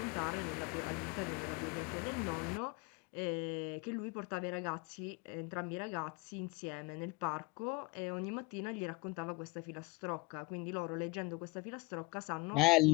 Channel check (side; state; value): right; quieter; 24.8 dB